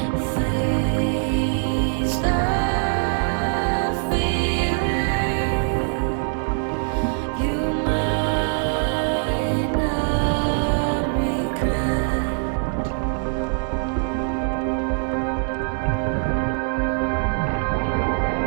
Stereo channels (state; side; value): silent; left; 61 dB below the other